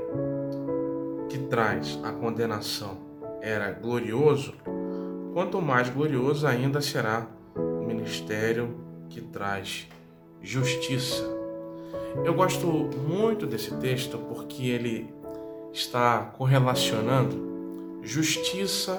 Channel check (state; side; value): identical; both; correlation 1.00